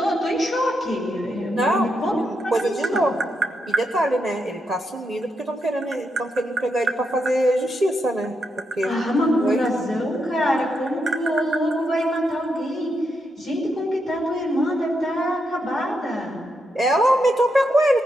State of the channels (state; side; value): normal; both; correlation 0.82